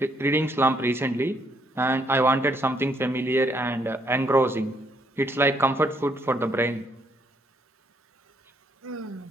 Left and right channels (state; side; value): normal; both; correlation 0.71